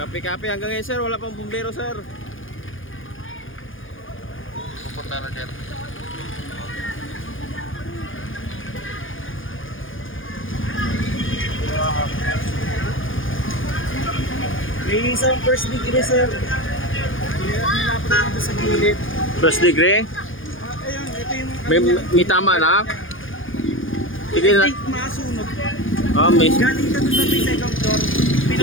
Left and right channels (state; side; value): late; right; 0.58 ms